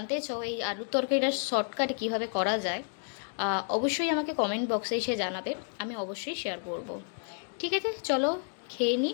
চাও এই আলুর তরকারিটা শর্টকাটে কীভাবে করা যায়, অবশ্যই আমাকে কমেন্ট বক্সে এসে জানাবে, আমি অবশ্যই শেয়ার করব। ঠিক আছে, চলো খেয়ে নিই।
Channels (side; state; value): right; silent; 57 dB below the other